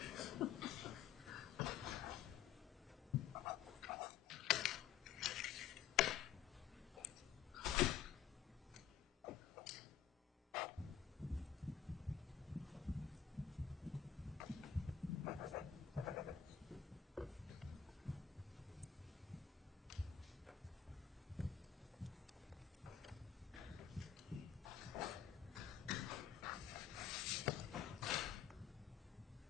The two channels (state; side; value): quieter; right; 8.6 dB